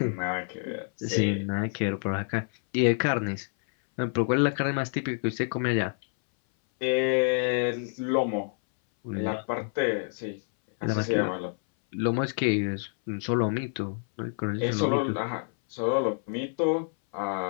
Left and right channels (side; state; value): right; silent; 59 dB below the other